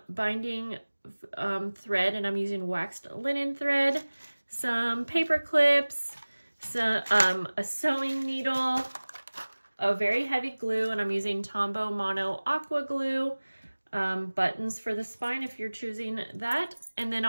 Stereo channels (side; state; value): both; inverted; correlation -1.00